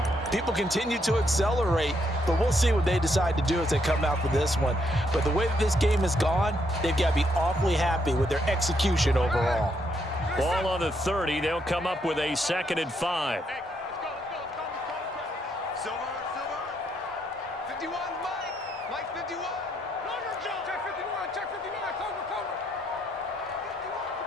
people continue to accelerate, but we'll see what they decide to do as they come out for this one. But the way that this game has gone, they've got to be awfully happy with their execution overall. Ball on the 30. They'll come up with a 2nd and 5. Silver. 51, Mike 51. Check 51, check 59, cover.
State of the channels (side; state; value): both; normal; correlation 0.75